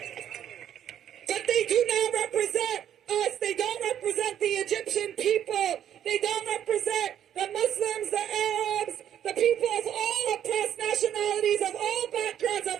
But they do not represent us. They don't represent the Egyptian people. They don't represent the Muslims, the Arabs, the people of all oppressed nationalities, of all backgrounds,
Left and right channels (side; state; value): left; quieter; 10.2 dB